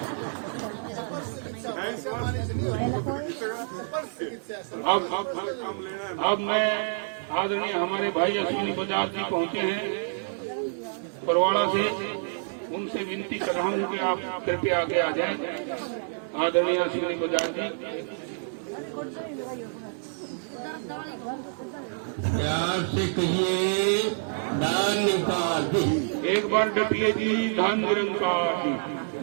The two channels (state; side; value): silent; left; digital silence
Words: अब मैं आदरणीय हमारे भाई अश्विनी बजाज जी पहुंचे हैं बरवाड़ा से, उनसे विनती कर रहा हूँ कि आप कृपया आगे आ जाएं। आदरणीय अश्विनी बजाज जी, प्यार से कहिए दान निरंकार। एक बार डटिए जी, धन निरंकार जी।